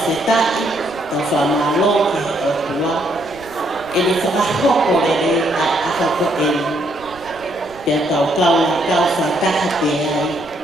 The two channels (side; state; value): right; noise; rumble, 23 dB below the sound